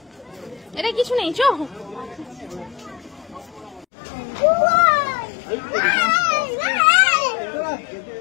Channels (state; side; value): drops out; right; at 3.9 s